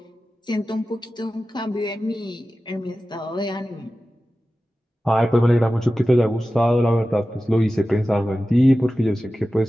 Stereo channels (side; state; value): both; normal; correlation 0.95